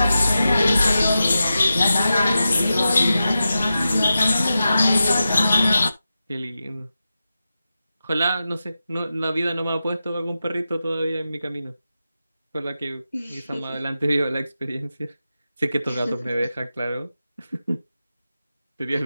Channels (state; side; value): inverted; both; correlation -0.91